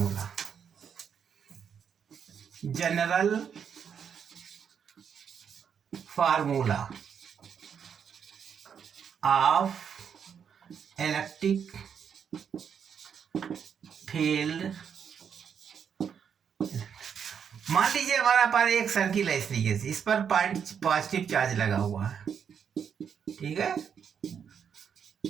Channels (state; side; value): quieter; left; 7.5 dB